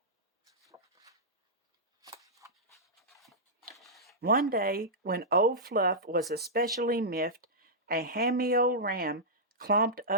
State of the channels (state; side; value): normal; both; correlation -0.11